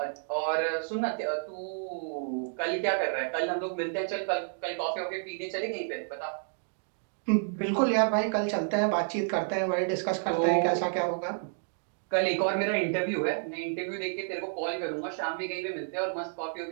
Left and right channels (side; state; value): left; silent; digital silence